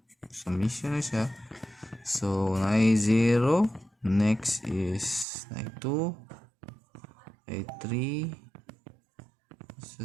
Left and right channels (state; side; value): drops out; left; at 5.2 s